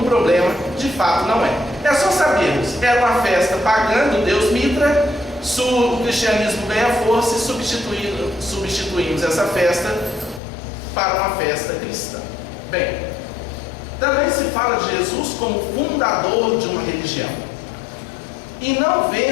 problema, de fato não é. É só sabermos, era uma festa pagã do deus Mitra, o cristianismo ganha força e substituímos essa festa para uma festa cristã. Bem, também se fala de Jesus como fundador de uma religião. E não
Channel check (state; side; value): drops out; right; at 10.4 s